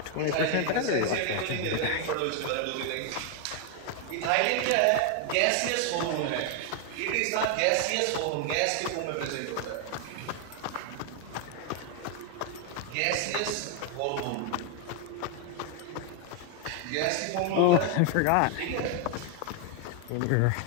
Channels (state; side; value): different; both; correlation 0.01